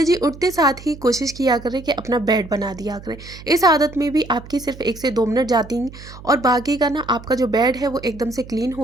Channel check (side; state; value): right; noise; hum, 16 dB below the sound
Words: जी, उठते साथ ही कोशिश किया करें कि अपना बेड बना दिया करें। इस आदत में भी आपकी सिर्फ 1 से 2 मिनट जाती हैं, और बाकी का ना आपका जो बेड है वो एकदम से क्लीन